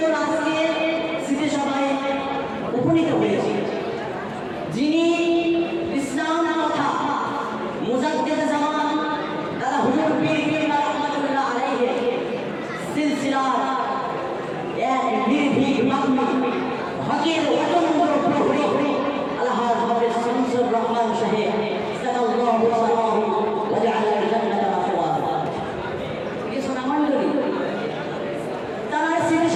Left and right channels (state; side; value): identical; both; correlation 1.00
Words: আজকে স্মৃতি সভায় উপনীত হয়েছি যিনি ইসলাম কথা মুজাদ্দিদ জামান দাদা হুজুর পীর কিবলা রাহমাতুল্লাহ আলাইহি সিলসিলার এক নির্ভীক মাগমি হকের অতন্দ্র প্রহরী আলহাজ হাফেজ শামসুর রহমান সাহেব সাল্লাল্লাহু আলাইহি ওয়া জাআলা জান্নাতা মাওয়া। কিছু নামণ্ডলী তার স্মৃতি